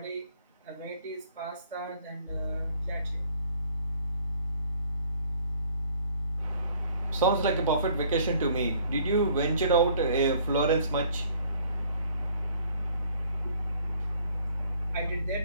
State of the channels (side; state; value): both; inverted; correlation -0.59